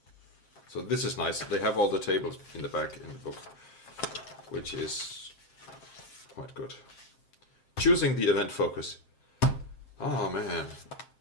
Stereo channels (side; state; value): right; late; 7.6 ms